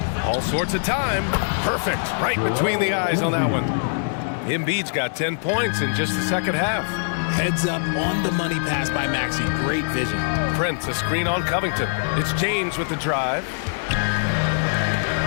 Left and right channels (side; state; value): right; silent; digital silence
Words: All sorts of time. Perfect. Right between the eyes on that one. Embiid's got 10 points in just the second half. Heads up on the money pass by Maxey. Great vision. Prince, a screen on Covington. It's James with the drive.